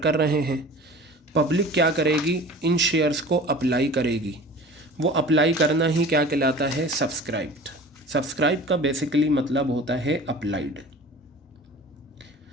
रहे हैं। पब्लिक क्या करेगी? इन शेयर्स को अप्लाई करेगी। वो अप्लाई करना ही क्या कहलाता है? सब्सक्राइब्ड। सब्सक्राइब का बेसिकली मतलब होता है अप्लाइड।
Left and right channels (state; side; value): normal; both; correlation 0.41